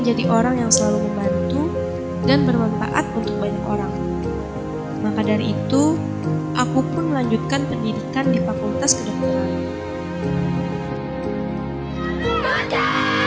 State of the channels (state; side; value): identical; both; correlation 1.00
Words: orang yang selalu membantu dan bermanfaat untuk banyak orang. Maka dari itu, aku pun melanjutkan pendidikan di Fakultas Kedokteran.